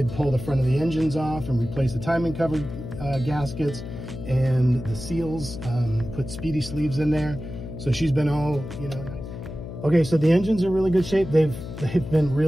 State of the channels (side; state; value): left; noise; hum, 10 dB below the sound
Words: pull the front of the engines off and replace the timing cover gaskets and the seals, put speedy sleeves in there. So she's been all, you know, nice. Okay, so the engines are in really good shape. They've been